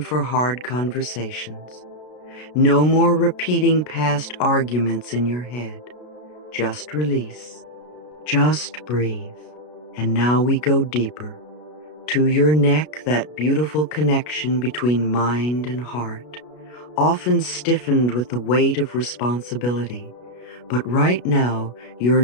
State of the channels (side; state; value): right; late; 33 ms